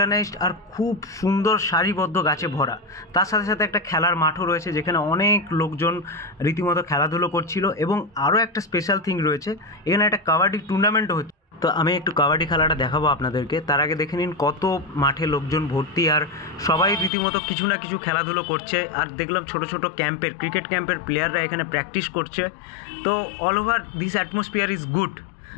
আর খুব সুন্দর সারিবদ্ধ গাছে ভরা। তার সাথে সাথে একটা খেলার মাঠও রয়েছে, যেখানে অনেক লোকজন রীতিমতো খেলাধুলো করছিল। এবং আরও একটা স্পেশাল থিং রয়েছে, এখানে একটা কাবাডি টুর্নামেন্টও হচ্ছে। তো আমি একটু কাবাডি খেলাটা দেখাবো আপনাদেরকে, তার আগে দেখে নিন কত মাঠে লোকজন ভর্তি, আর সবাই রীতিমতো কিছু না কিছু খেলাধুলো করছে। আর দেখলাম ছোট ছোট ক্যাম্পের, ক্রিকেট ক্যাম্পের প্লেয়াররা এখানে প্র্যাকটিস করছে। তো all over this atmosphere is good.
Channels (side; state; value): right; drops out; at 17.1 s